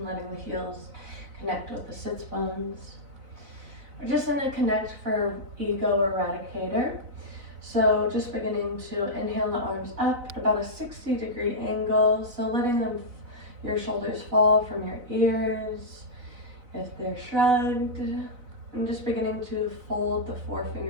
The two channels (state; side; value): late; left; 4.0 ms